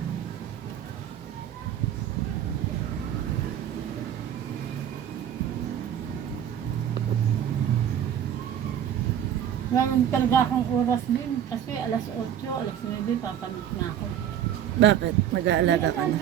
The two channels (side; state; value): left; quieter; 9.9 dB